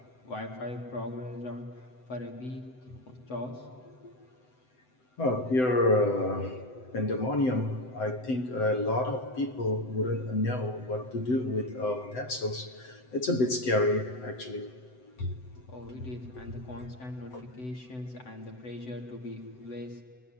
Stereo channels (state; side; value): late; right; 7.9 ms